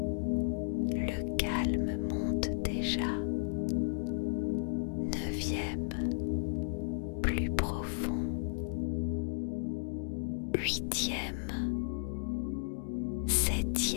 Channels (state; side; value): silent; right; digital silence